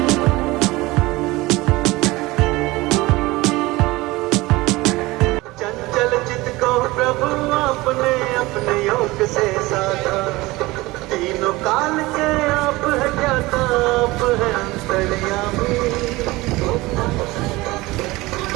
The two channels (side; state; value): left; quieter; 20.6 dB